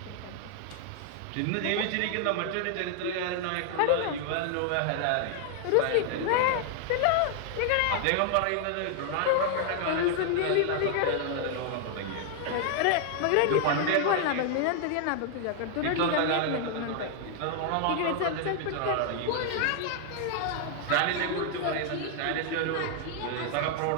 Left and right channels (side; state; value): both; different; correlation 0.00